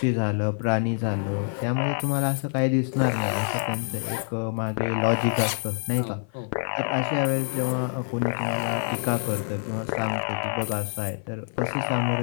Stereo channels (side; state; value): right; silent; 55 dB below the other